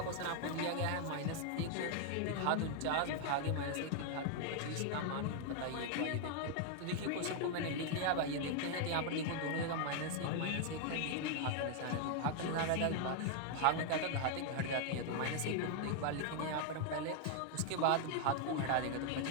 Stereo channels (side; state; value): both; different; correlation 0.00